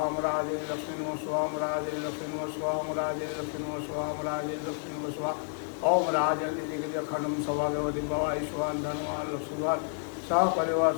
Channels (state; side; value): silent; right; 58 dB below the other